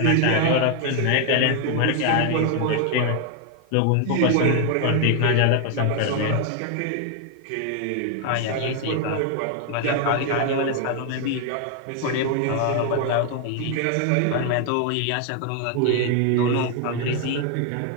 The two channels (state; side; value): different; both; correlation 0.01